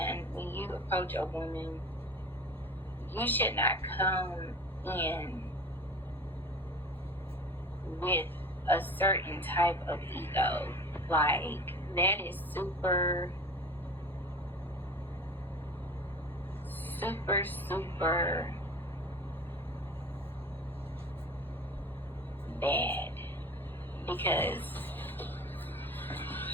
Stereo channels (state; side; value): normal; both; correlation 0.37